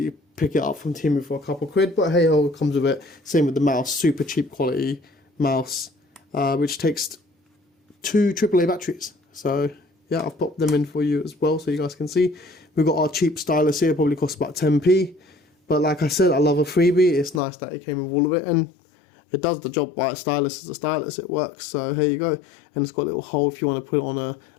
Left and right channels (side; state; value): right; drops out; at 17.4 s